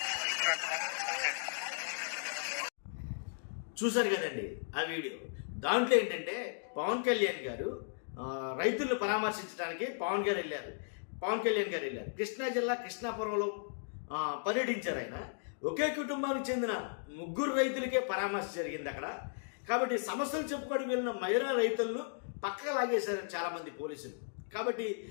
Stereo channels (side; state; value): right; silent; digital silence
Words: చూశారు కదండి ఆ వీడియో. దాంట్లో ఏంటంటే పవన్ కళ్యాణ్ గారు రైతులను పరామర్శించడానికి పవన్ కళ్యాణ్ గారు వెళ్ళారు. కృష్ణా జిల్లా కృష్ణాపురంలో పర్యటించారు. ఆయన ఒకే కుటుంబానికి చెందిన 3 రైతులకే పరామర్శ జరిగింది అక్కడ. కాబట్టి సమస్యలు చెప్పుకోవడానికి వెళ్ళిన మహిళా రైతులను పక్కకు లాగేశారు చాలామంది పోలీసులు. కాబట్టి